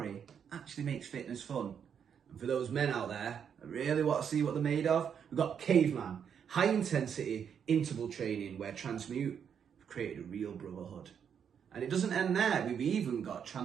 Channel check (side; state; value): left; quieter; 7.7 dB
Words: actually makes fitness fun. And for those men out there that really want to see what they're made of, we've got Caveman, high intensity interval training, where TRANSMUTE have created a real brotherhood. And it doesn't end there. We've even got